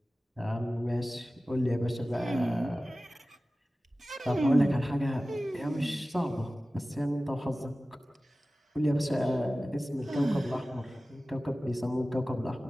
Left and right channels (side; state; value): both; normal; correlation 0.96